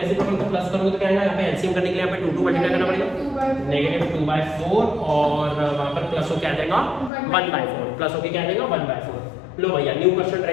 को प्लस करूँगा तो क्या आएगा? यहाँ पे एलसीएम करने के लिए यहाँ पे 2 मल्टीप्लाई करना पड़ेगा, -2/4 और वहाँ पर प्लस हो क्या आ जाएगा? 1/4 प्लस होके क्या आ जाएगा? 1/4। लो भैया न्यू क्वेश्चन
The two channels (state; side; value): drops out; right; at 7.1 s